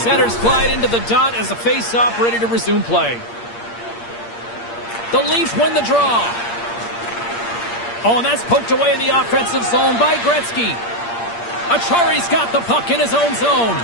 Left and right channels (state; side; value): late; right; 8.6 ms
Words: glide into the dot as the face-off ready to resume play. The Leafs win the draw. Oh, and that's poked away in the offensive zone by Gretzky. Achari's got the puck in his own zone.